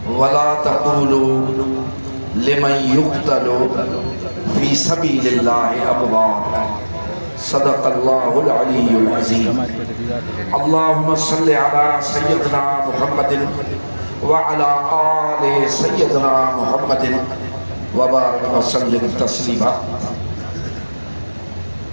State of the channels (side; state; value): both; inverted; correlation -1.00